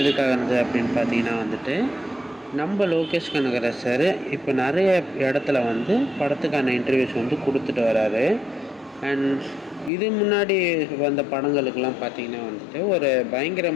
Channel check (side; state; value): right; drops out; at 9.9 s